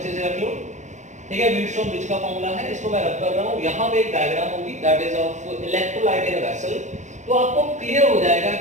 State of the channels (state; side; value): late; left; 0.35 ms